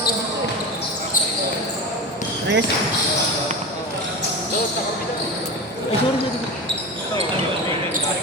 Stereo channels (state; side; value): normal; both; correlation 0.26